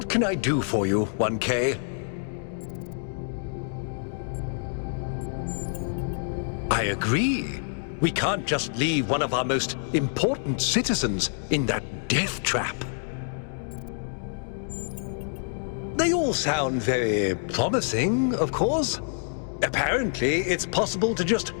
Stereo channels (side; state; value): right; silent; digital silence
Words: can I do for you, 1K? I agree. We can't just leave one of our most important citizens in that death trap. They all sound very promising, of course. Apparently, it's possible to just